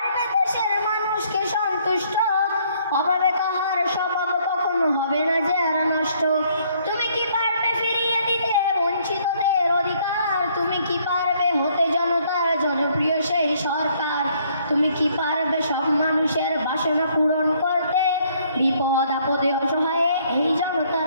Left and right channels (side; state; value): both; inverted; correlation -0.65